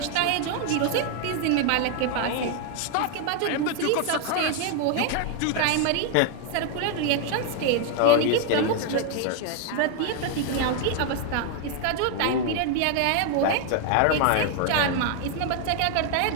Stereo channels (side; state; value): both; different; correlation 0.00